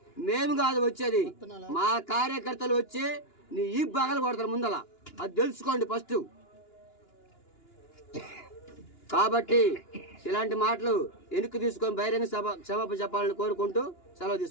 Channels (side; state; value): right; late; 2.9 ms